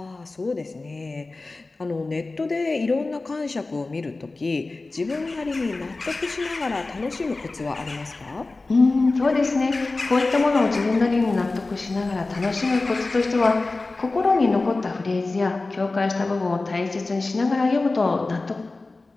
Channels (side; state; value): right; quieter; 3.4 dB